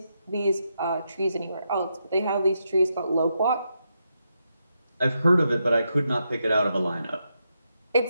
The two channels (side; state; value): both; inverted; correlation -0.83